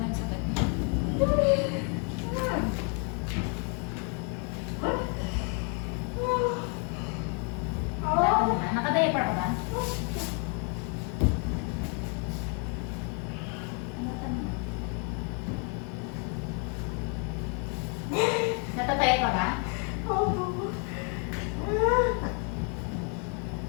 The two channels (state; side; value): quieter; right; 39.2 dB